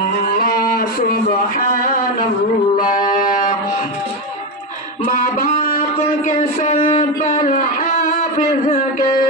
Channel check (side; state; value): both; normal; correlation 0.12